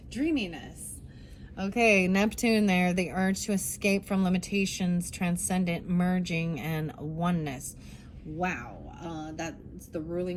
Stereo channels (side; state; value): both; identical; correlation 1.00